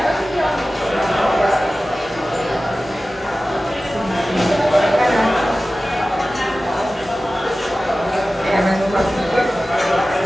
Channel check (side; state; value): both; normal; correlation 0.96